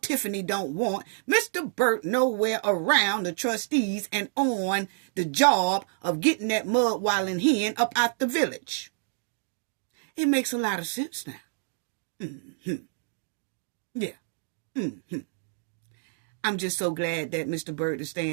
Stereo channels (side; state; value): left; silent; digital silence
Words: don't want Mr. Burt nowhere around the trustees and on the job of getting that mud wallin' hen up out the village. It makes a lot of sense now. Yeah. I'm just so glad that Mr. Burt is